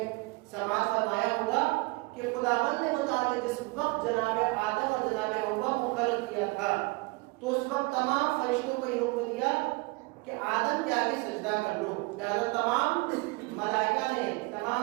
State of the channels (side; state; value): left; quieter; 25.6 dB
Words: سماعت فرمایا ہوگا کہ خداوند متعال جس وقت جناب آدم اور جناب حوا کو خلق کیا تھا تو اس وقت تمام فرشتوں کو یہ حکم دیا کہ آدم کے آگے سجدہ کر لو۔ لہذا تمام ملائکہ نے،